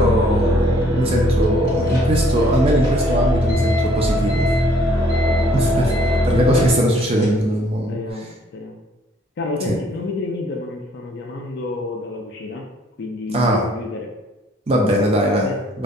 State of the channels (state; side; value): normal; both; correlation 0.63